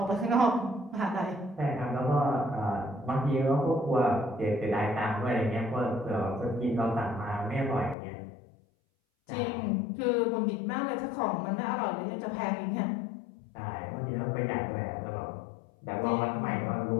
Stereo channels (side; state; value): right; drops out; at 8.0 s